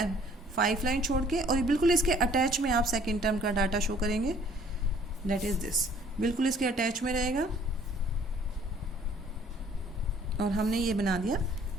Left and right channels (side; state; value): both; normal; correlation 0.57